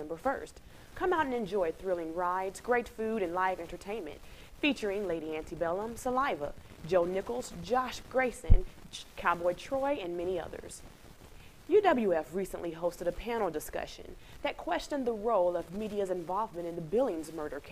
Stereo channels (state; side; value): identical; both; correlation 1.00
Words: 1st. Come out and enjoy thrilling rides, great food, and live entertainment, featuring Lady Antebellum, Saliva, Joe Nichols, Josh Grayson, Cowboy Troy, and many others. UWF recently hosted a panel discussion that questioned the role of media's involvement in the Billings murder